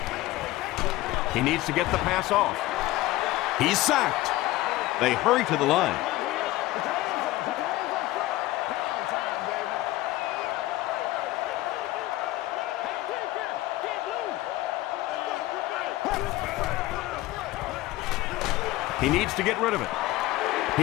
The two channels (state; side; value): quieter; right; 17.5 dB